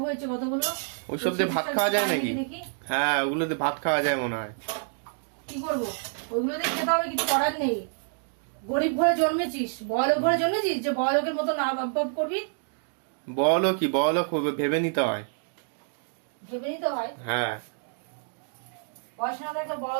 হয়েছে কতগুলো। ওইসব দিয়ে ভাত খাওয়া যায় নাকি? হ্যাঁ, ওগুলো দিয়ে ভাত খাওয়া যায় মনে হয়। কি করবো? ওইগুলো দিয়ে খেতে হবে, কিছু করার নেই। গরিব ঘরে জন্মেছিস, বড়লোক ঘরে জন্মেছিস যে বড়লোকের মতো না ভাব করবি? বড়লোক ভেবে নিতে হয়। ভেবে নিতে হয়? হ্যাঁ। পয়সা না থাকলে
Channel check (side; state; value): left; silent; digital silence